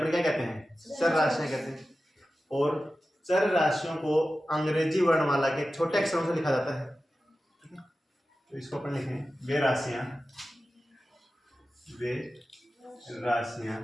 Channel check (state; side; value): normal; both; correlation 0.94